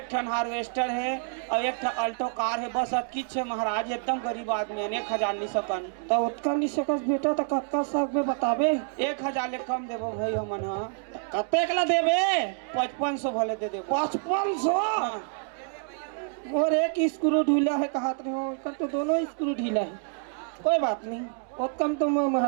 ठन हार्वेस्टर है और 1 ठन अल्टो कार है, बस किच है महाराज। एकदम गरीब आदमी है। 1000 नहीं सकन तो उतना नहीं सकस बेटा। तो कत्का सक में बताबे? 1000 ले कम देबो भाई हमन। हाँ कतेक ला देबे? 5500 भले दे देबो। 5500? और एक स्क्रू ढीला है कहत रहे हो, कल तो दोनों स्क्रू ढीला है। कोई बात नहीं, बहुत कम तो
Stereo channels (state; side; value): silent; left; 55 dB below the other